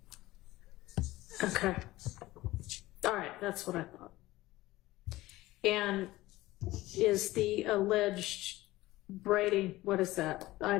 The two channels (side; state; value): right; quieter; 17.8 dB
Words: Okay. All right, that's what I thought. And is the alleged Brady, what is that?